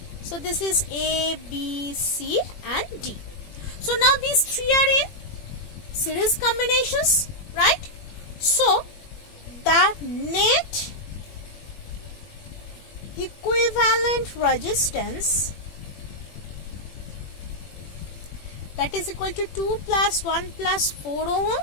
So this is A, B, C and D. So now these 3 are in series combinations, right? So the net equivalent resistance, that is equal to 2 plus 1 plus 4 ohm,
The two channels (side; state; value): right; late; 21 ms